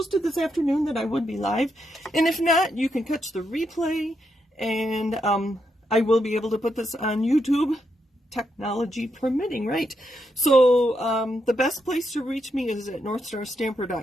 this afternoon that I would be live, and if not, you can catch the replay, and I will be able to put this on YouTube, technology permitting, right? So the best place to reach me is at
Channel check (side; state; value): both; normal; correlation 0.81